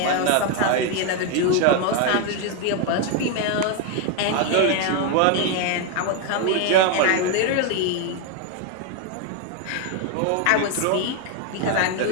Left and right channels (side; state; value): both; different; correlation 0.01